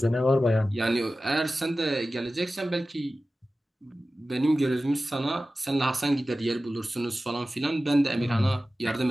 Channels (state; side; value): normal; both; correlation 0.95